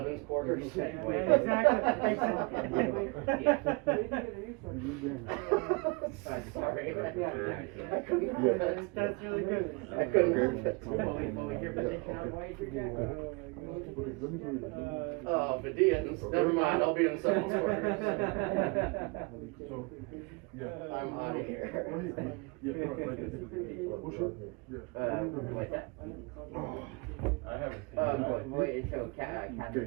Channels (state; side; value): quieter; left; 29.4 dB